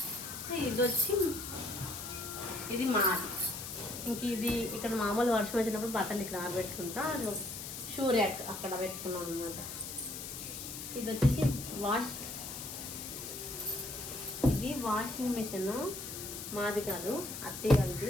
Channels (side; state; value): left; noise; hiss, 8 dB below the sound